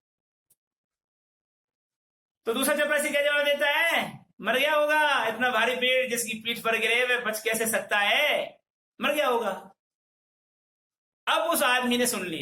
तो दूसरा चपरासी क्या जवाब देता है? मर गया होगा, इतना भारी पेड़ जिसकी पीठ पर गिरे वह बच कैसे सकता है, मर गया होगा। अब उस आदमी ने सुन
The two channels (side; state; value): both; identical; correlation 1.00